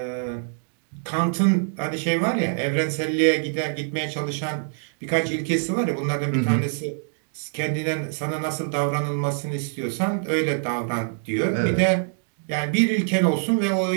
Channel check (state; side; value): silent; left; digital silence